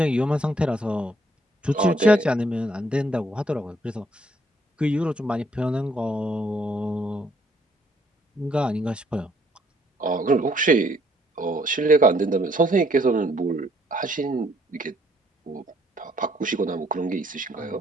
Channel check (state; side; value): normal; both; correlation 0.67